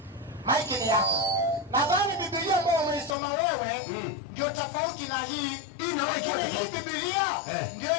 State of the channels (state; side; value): drops out; right; at 3.2 s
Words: Nadhani Biblia ambayo umeisoma wewe ndio tofauti na hii. Hii Biblia ndio